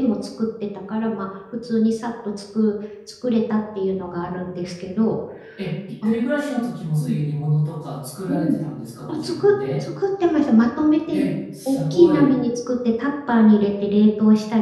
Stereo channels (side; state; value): both; identical; correlation 1.00